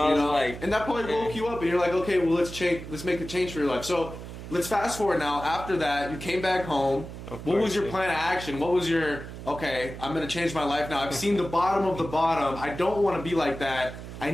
You was know, like, and that probably man. woke you up, and you're like, okay, well let's make a change for your life. So let's fast forward now. After that, you came back home. What was your plan of action? What was your, okay, I'm going to change my life now. I've seen the bottom of the bottom. I don't want to be like that. I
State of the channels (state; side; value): noise; right; hum, 11 dB below the sound